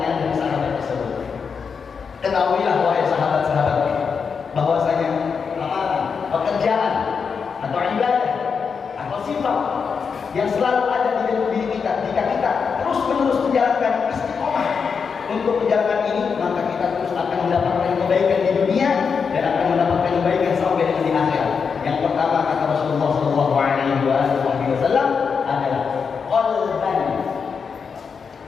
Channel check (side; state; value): right; quieter; 5.9 dB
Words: dari sahabat tersebut. Ketahuilah wahai sahabat-sahabatku, bahwasanya amalan, pekerjaan atau ibadah atau sifat yang selalu ada di dalam diri kita, jika kita terus menerus menjalankan istiqomah untuk menjalankan ini, maka kita terus akan mendapatkan kebaikan di dunia dan akan mendapatkan kebaikan sampai dengan di akhirat. Yang pertama kata Rasulullah Shallallahu Alaihi Wasallam adalah